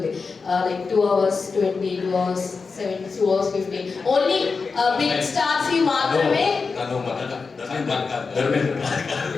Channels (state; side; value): quieter; right; 4.7 dB